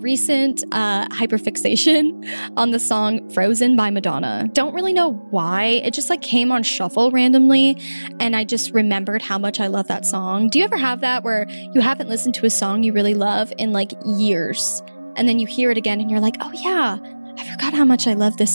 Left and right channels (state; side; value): inverted; both; correlation -1.00